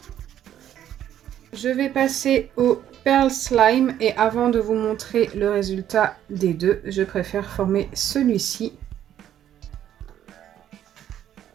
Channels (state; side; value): quieter; left; 10.9 dB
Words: Je vais passer au Pearl Slime et avant de vous montrer le résultat des deux, je préfère former celui-ci.